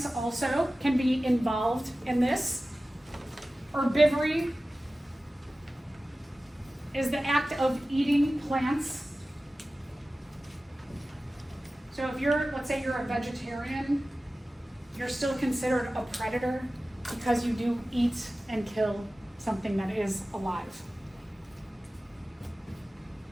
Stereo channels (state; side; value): normal; both; correlation 0.96